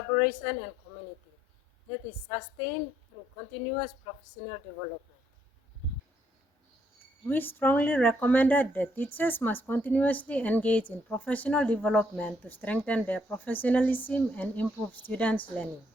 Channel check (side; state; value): both; normal; correlation 0.71